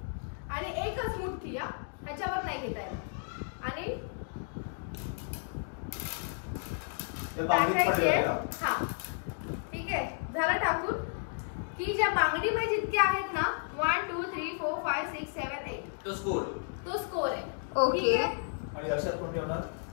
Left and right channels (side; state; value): right; silent; digital silence